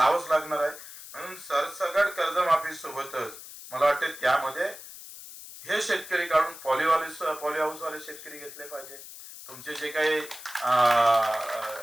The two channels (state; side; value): noise; left; hiss, 14 dB below the sound